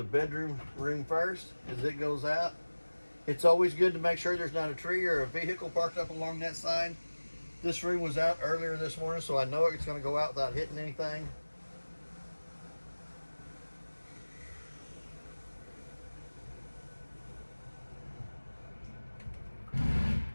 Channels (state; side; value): inverted; both; correlation -1.00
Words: bedroom room first as it goes out. It's always good to make sure there's not a tree or a vehicle parked up along that side. This room was out earlier this morning, so I know it's going to go out without hitting anything.